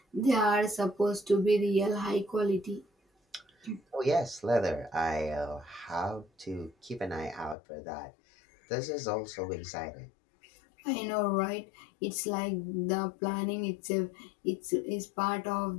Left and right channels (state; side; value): drops out; right; at 7.6 s